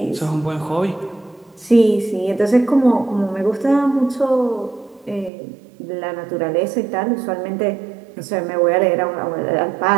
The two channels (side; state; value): left; drops out; at 5.3 s